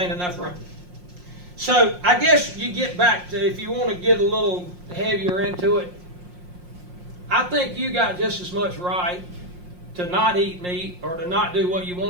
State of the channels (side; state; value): left; late; 5.6 ms